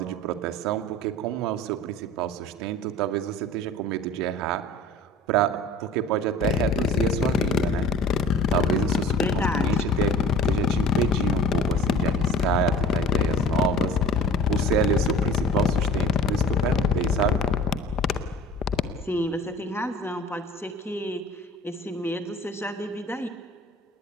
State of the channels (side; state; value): both; normal; correlation 0.44